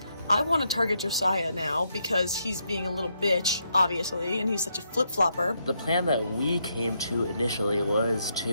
I want to target Josiah now because he's being a little bitch, obviously, and he's such a flip-flopper. The plan that we came to initially was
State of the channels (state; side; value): inverted; both; correlation -0.78